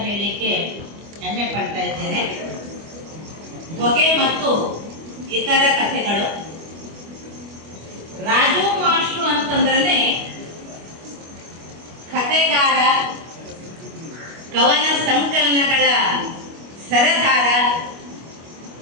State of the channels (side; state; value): left; late; 25 ms